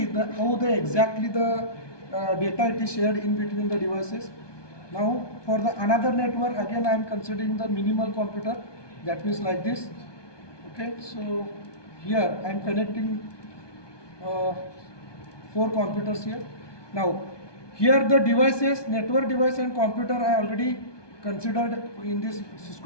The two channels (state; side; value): late; right; 1.2 ms